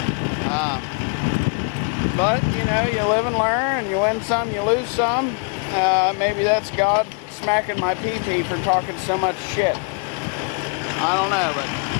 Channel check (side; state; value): right; quieter; 36.5 dB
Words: But, you know, you live and learn, and you win some, you lose some. Maybe that's God smacking my PG for talking so much shit. I don't know, but